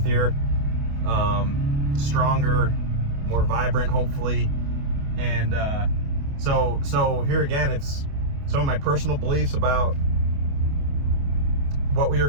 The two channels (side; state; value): left; late; 28 ms